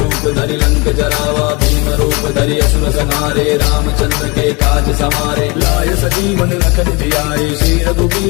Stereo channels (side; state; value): right; quieter; 27.6 dB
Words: धरि लंक जरावा। भीम रूप धरि असुर संहारे रामचंद्र के काज समारे। लाय सजीवन लखन जियाए श्री